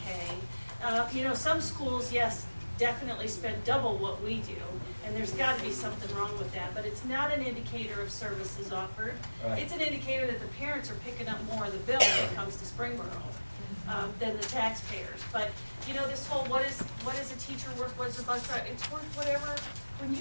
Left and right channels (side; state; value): both; inverted; correlation -1.00